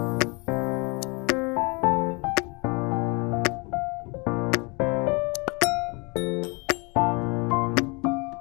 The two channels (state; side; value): quieter; right; 30.1 dB